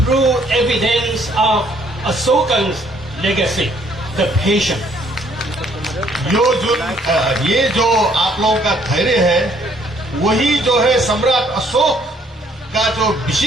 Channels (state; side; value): normal; both; correlation 0.64